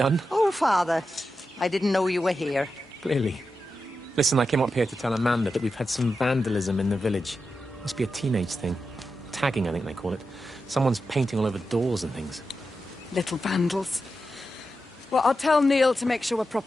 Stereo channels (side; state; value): both; normal; correlation 0.89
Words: Oh, Father, I didn't know you were here. Clearly. Listen, I came up here to tell Amanda that we've had some vandalism in the village. Must be a teenage thing. Tagging, I think they call it. Someone's painting all over doors and things. Little vandals. Well, I'll tell Neil to make sure we're